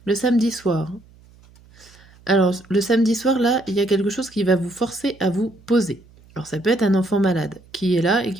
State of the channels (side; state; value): right; noise; hum, 27 dB below the sound